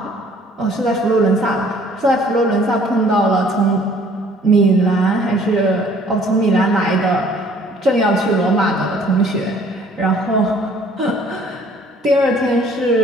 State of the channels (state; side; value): normal; both; correlation 0.57